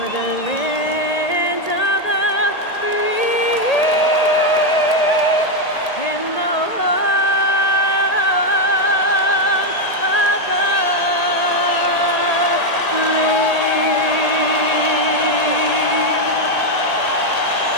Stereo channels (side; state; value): right; late; 1.8 ms